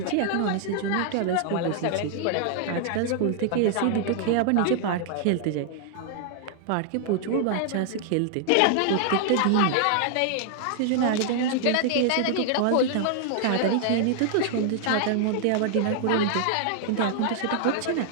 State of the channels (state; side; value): different; both; correlation 0.00